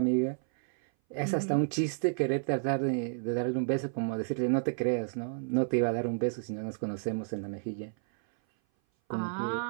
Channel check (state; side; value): silent; left; 57 dB below the other